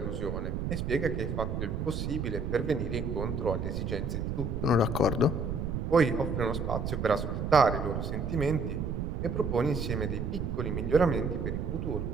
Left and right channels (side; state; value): right; noise; rumble, 2 dB below the sound